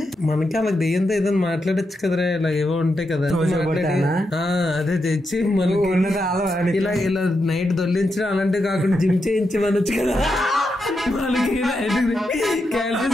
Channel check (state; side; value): normal; both; correlation 0.85